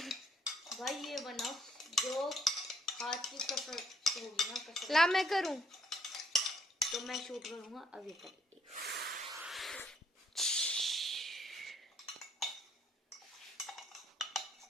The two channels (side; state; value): both; normal; correlation 0.68